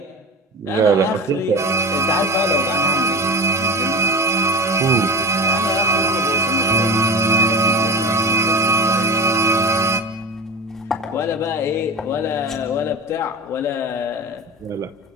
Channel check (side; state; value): both; normal; correlation 0.30